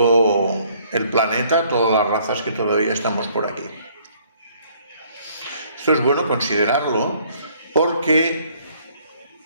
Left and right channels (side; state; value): both; inverted; correlation -0.62